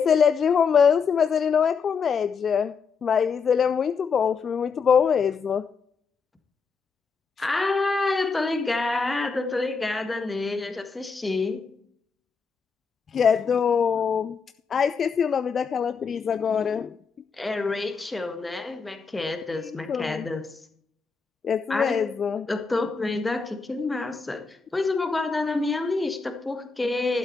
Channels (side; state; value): right; quieter; 5.4 dB